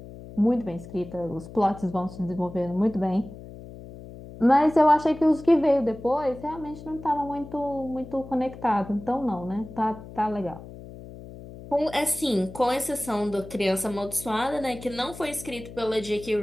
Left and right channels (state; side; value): noise; left; hum, 15 dB below the sound